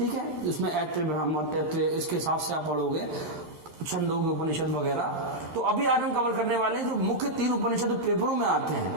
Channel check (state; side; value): late; left; 12 ms